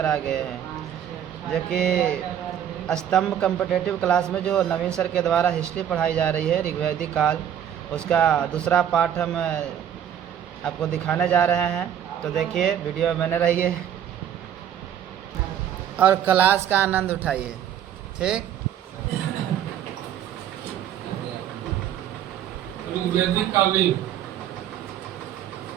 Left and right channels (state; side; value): quieter; left; 9.8 dB